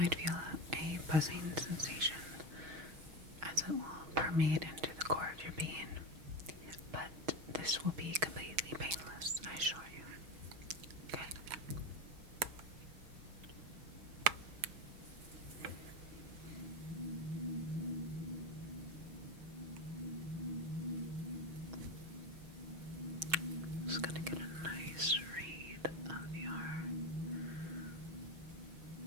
feel a buzzing sensation as it will permeate into the core of your being, but this will be completely painless, I assure you. Okay? Just gonna get a nice read of your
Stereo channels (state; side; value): late; left; 6.3 ms